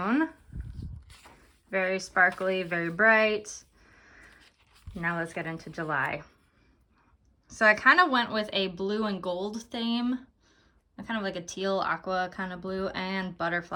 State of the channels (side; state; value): both; identical; correlation 1.00